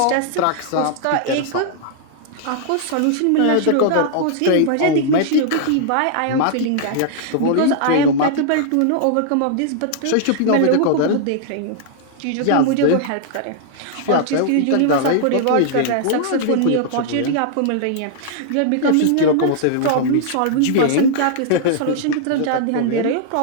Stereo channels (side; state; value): both; different; correlation -0.01